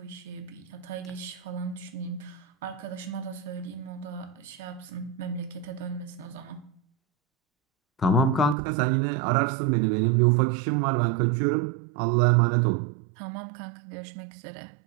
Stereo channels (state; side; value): drops out; left; at 8.6 s